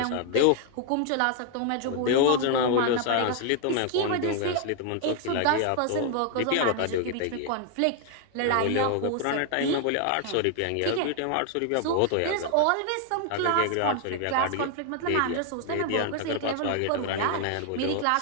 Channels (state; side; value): different; both; correlation 0.00